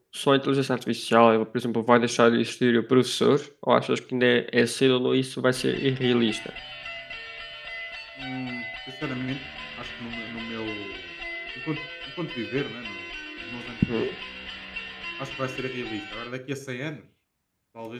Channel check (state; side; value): identical; both; correlation 1.00